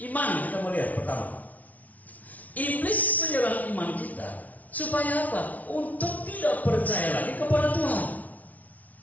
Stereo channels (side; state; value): right; late; 0.072 ms